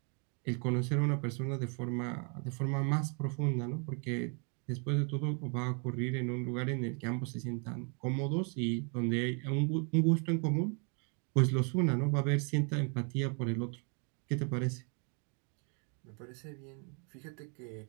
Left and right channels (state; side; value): quieter; left; 38.5 dB